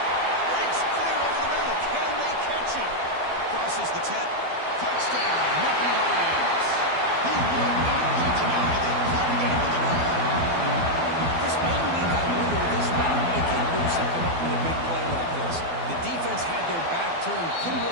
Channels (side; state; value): left; late; 12 ms